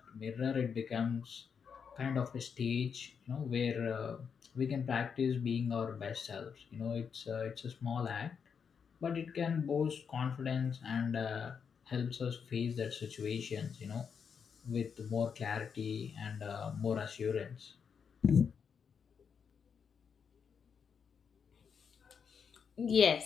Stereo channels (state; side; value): quieter; right; 6.6 dB